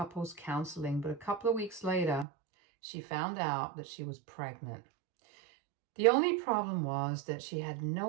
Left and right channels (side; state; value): left; drops out; at 2.2 s